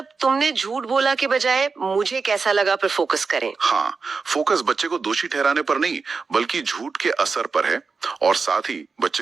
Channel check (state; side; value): quieter; left; 4.7 dB